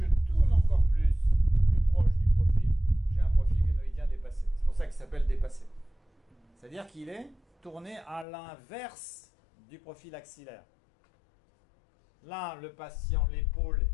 tourne encore plus proche du profil, j'ai un profil glénoïdien dépassé. C'est pour ça qu'il s'appelle dépassé. C'est-à-dire qu'il est tourné à l'inverse du profil axillaire. Là, le patient, l'épaule,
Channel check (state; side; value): drops out; right; at 8.2 s